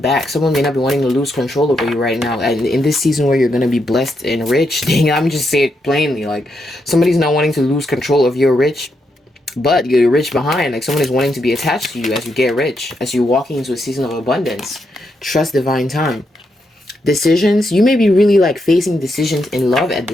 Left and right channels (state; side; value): normal; both; correlation 0.81